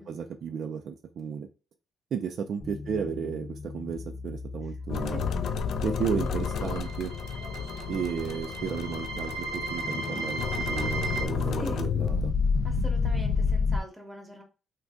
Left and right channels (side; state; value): both; normal; correlation 0.66